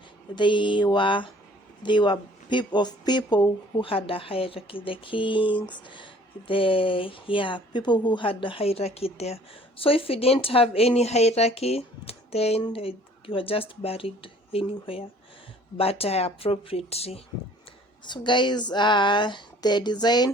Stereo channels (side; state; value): both; normal; correlation 0.54